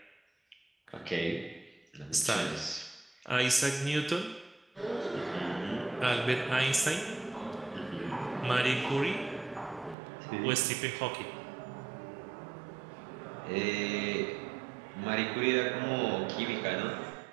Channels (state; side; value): drops out; left; at 10.0 s